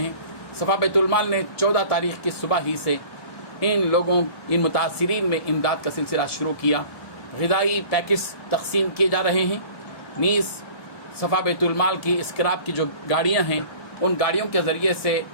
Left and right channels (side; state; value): right; late; 1.7 ms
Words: صفا بیت المال نے 14 تاریخ کی صبح ہی سے ان متاثرین میں امداد کا سلسلہ شروع کیا۔ غذائی پیکج تقسیم کیے جا رہے ہیں۔ نیز صفا بیت المال کی اسکراپ کی جو گاڑیاں ہیں، ان گاڑیوں کے ذریعے سے